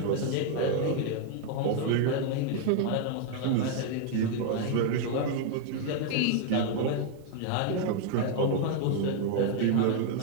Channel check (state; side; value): different; both; correlation 0.00